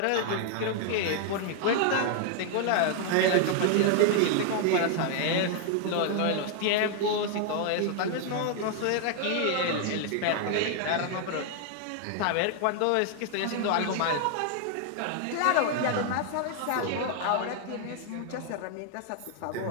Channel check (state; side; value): different; both; correlation 0.00